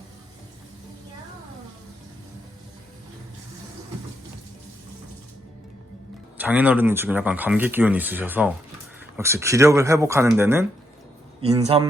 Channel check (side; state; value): both; normal; correlation 0.78